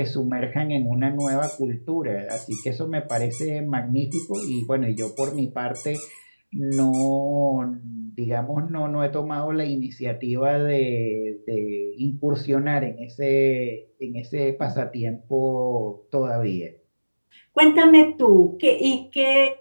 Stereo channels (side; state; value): both; inverted; correlation -1.00